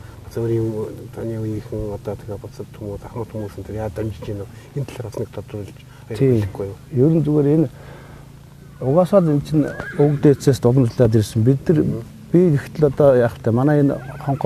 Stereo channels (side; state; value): both; identical; correlation 1.00